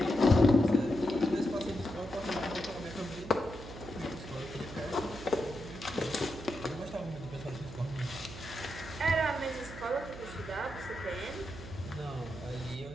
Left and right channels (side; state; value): right; noise; hum, 12 dB below the sound